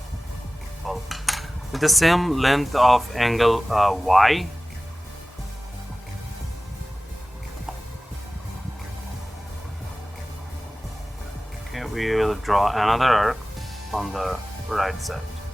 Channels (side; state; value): both; normal; correlation 0.97